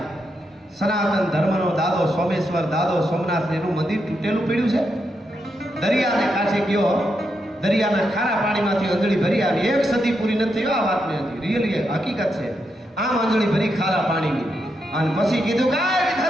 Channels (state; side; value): normal; both; correlation 0.83